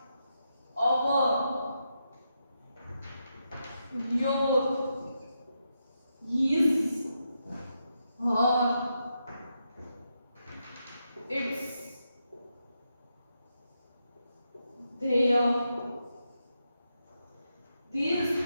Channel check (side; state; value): both; inverted; correlation -0.84